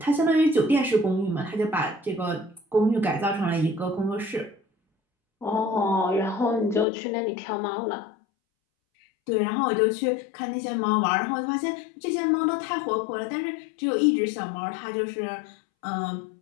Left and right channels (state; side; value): drops out; right; at 6.9 s